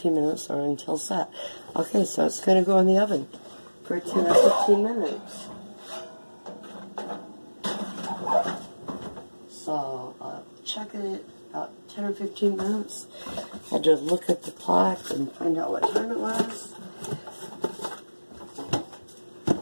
minutes or until set. Okay, so it's going to go in the oven for 10 or 15 minutes. So, check it out 10 or 15 minutes. Had to look at the clock and find out what time it was.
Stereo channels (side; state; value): both; inverted; correlation -1.00